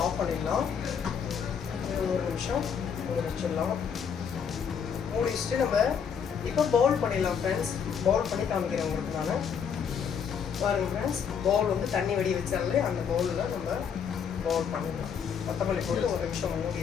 ஆஃப் பண்ணிடலாம். இது 1 நிமிஷம் மூடி வச்சிடலாம். மூடி வச்சுட்டு நம்ம இப்போ பவுல் பண்ணிடலாம் ஃப்ரெண்ட்ஸ். பவுல் பண்ணி காமிக்கிறேன் உங்களுக்கு நான். பாருங்கள் ஃப்ரெண்ட்ஸ், பவுல் வந்து தண்ணி வடி வச்சாலே அந்த பவுலில் நம்ம பவுல் பண்ணிடலாம். கொத்தமல்லி போட்டு 1 நிமிஷம்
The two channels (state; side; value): quieter; right; 7.1 dB